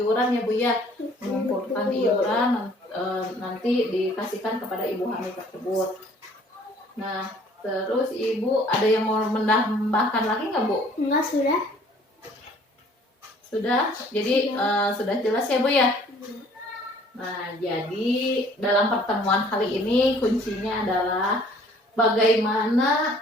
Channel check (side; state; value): both; normal; correlation 0.56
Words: ya Bu ya, mengumpulkan iuran nanti dikasihkan kepada ibu hamil tersebut. Nah, terus ibu ada yang mau menambahkan lagi nggak Bu? Enggak, sudah. Sudah, jadi sudah jelas ya Bu ya. Nah, jadi dalam pertemuan kali ini kuncinya adalah bagaimana